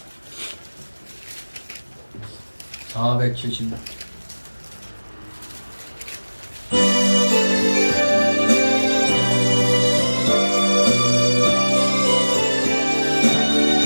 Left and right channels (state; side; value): inverted; both; correlation -1.00